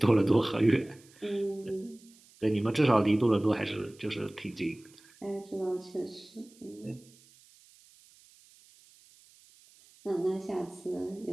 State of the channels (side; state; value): right; noise; hiss, 27 dB below the sound